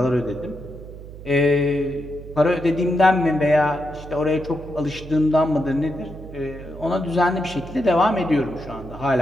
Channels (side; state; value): right; noise; hum, 14 dB below the sound